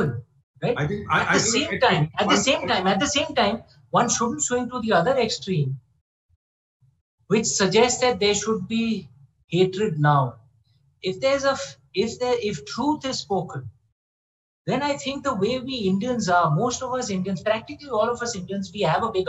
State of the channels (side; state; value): both; identical; correlation 1.00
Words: right? At the same time, one shouldn't swing to the other extreme, which suggests that there should be hatred now. If truth is spoken, then I think the way we Indians are, most of us Indians, practically all of us Indians, we have a big